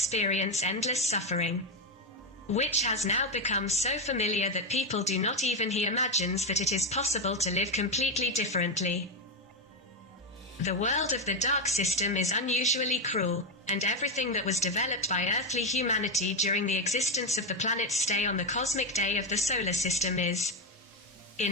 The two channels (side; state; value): both; normal; correlation 0.09